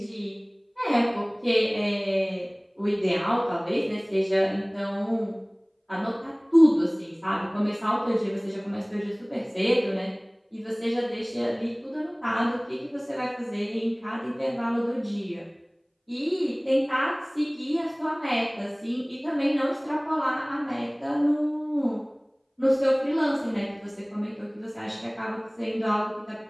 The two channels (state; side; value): identical; both; correlation 1.00